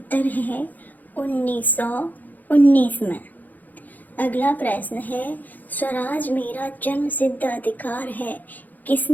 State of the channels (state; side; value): late; right; 0.083 ms